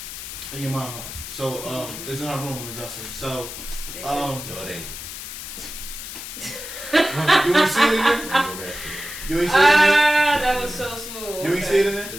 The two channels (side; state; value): left; noise; hiss, 9 dB below the sound